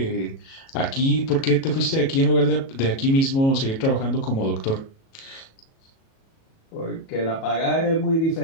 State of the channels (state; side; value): late; right; 37 ms